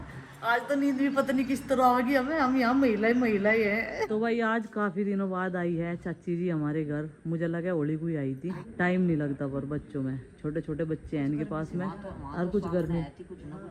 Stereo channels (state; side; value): identical; both; correlation 1.00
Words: आज तो नींद भी पता नहीं किस तरह आएगी हमें, हम यहाँ महिला ही है। तो भाई आज काफी दिनों बाद आई है चाची जी हमारे घर। मुझे लगा होली कोई आई थी, टाइम नहीं लगता पर बच्चों में, छोटे छोटे बच्चे हैं इनके पास में और कुछ गर्मी।